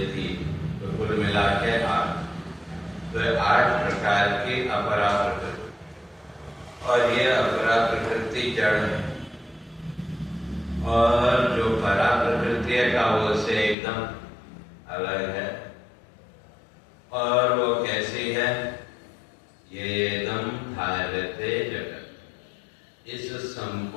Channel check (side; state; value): right; drops out; at 13.8 s